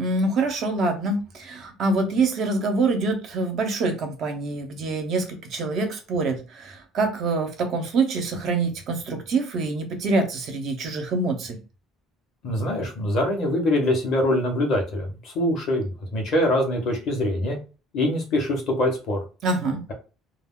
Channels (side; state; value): both; normal; correlation 0.50